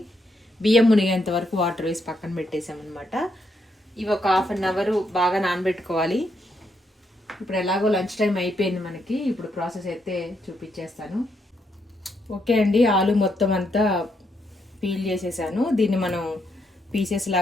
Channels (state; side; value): normal; both; correlation 0.78